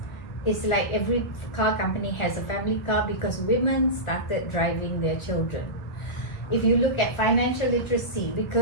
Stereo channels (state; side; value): late; right; 1.5 ms